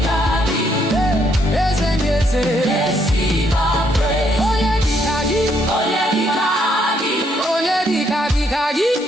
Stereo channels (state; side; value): normal; both; correlation 0.72